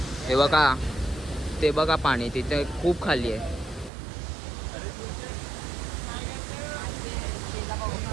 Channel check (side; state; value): left; drops out; at 3.9 s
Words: हे बघा, ते बघा पाणी तिथे खूप खाली आहे.